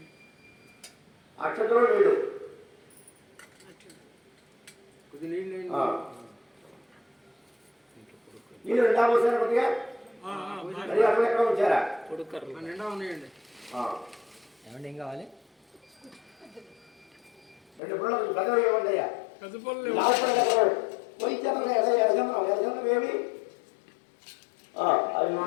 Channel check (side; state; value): right; drops out; at 17.8 s